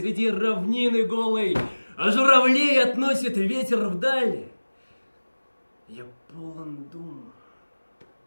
равнины голой, а журавлей относит ветер вдаль. Я полон дум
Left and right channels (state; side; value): inverted; both; correlation -1.00